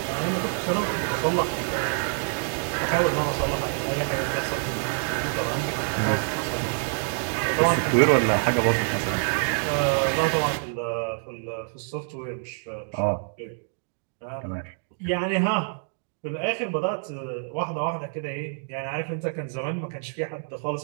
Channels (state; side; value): silent; left; 60 dB below the other